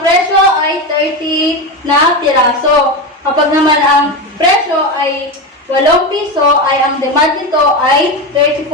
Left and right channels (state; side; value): normal; both; correlation 0.17